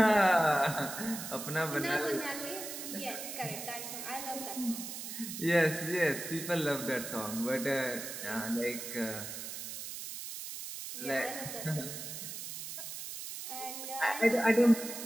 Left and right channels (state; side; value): noise; right; hiss, 8 dB below the sound